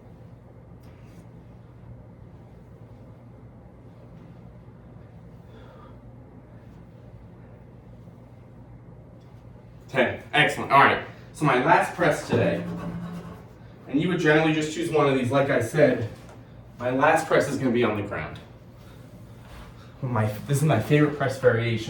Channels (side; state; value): both; identical; correlation 1.00